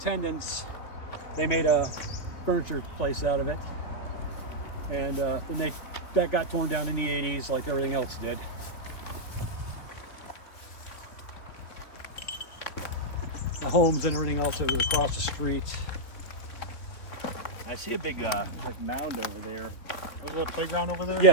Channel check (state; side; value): late; right; 3.3 ms